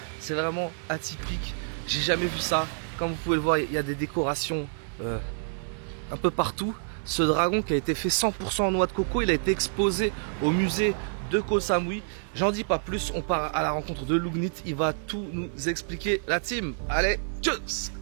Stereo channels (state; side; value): silent; left; digital silence